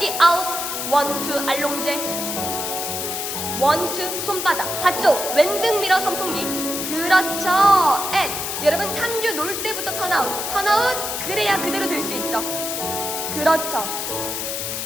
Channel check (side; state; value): left; noise; hiss, 3 dB below the sound